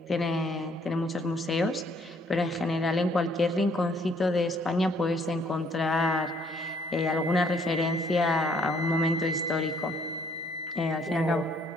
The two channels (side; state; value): both; normal; correlation 0.65